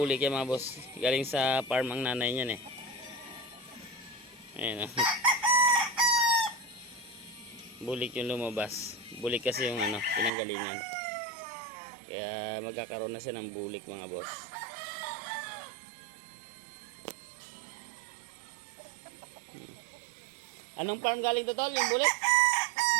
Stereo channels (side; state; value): left; drops out; at 10.3 s